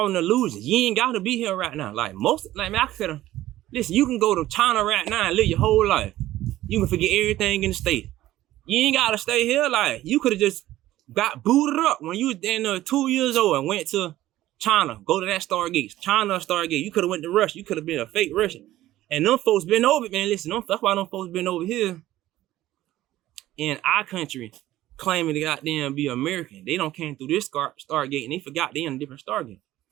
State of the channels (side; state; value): left; quieter; 14.9 dB